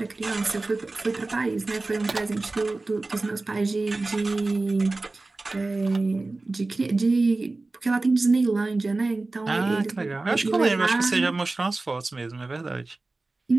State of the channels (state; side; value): quieter; left; 3.3 dB